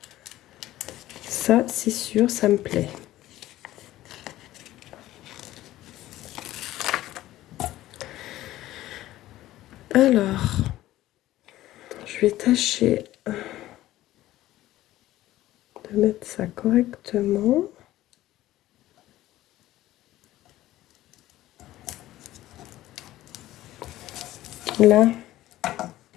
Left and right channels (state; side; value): quieter; right; 15.2 dB